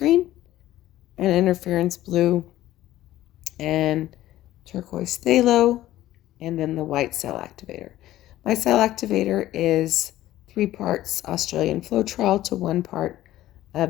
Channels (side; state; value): right; quieter; 14.6 dB